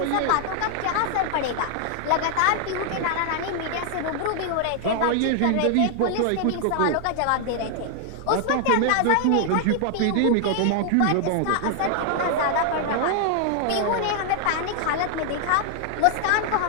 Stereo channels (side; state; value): both; different; correlation 0.00